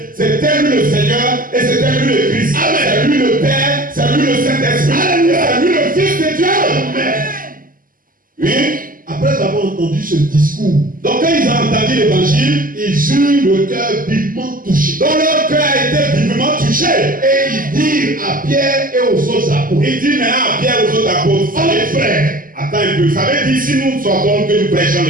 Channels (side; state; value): left; late; 0.41 ms